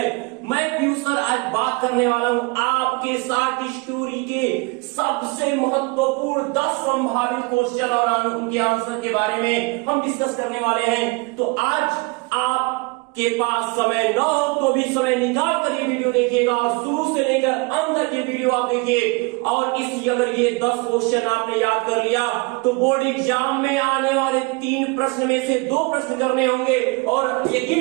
मैं पीयूष सर आज बात करने वाला हूँ आपके साथ स्टोरी के सबसे महत्वपूर्ण 10 संभावित क्वेश्चन और उनके आंसर के बारे में हम डिस्कस करने वाले हैं। तो आज आप के पास समय न हो तो भी समय निकाल कर ये वीडियो देखिएगा और शुरू से लेकर अंत तक ये वीडियो आप देखिए। और इस अगर ये 10 क्वेश्चन आपने याद कर लिया तो बोर्ड एग्जाम में आने वाले 3 प्रश्न में से 2 प्रश्न करने होंगे और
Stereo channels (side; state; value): left; quieter; 27.6 dB